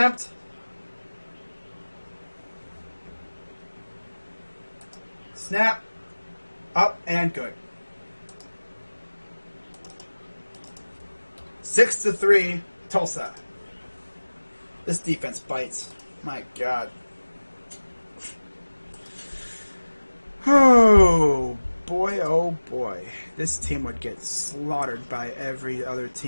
Snap. Up and good. 6-3, Tulsa. This defense bites. My God. Oh, boy, oh, boy. This team would get slaughtered by every other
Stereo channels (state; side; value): inverted; both; correlation -1.00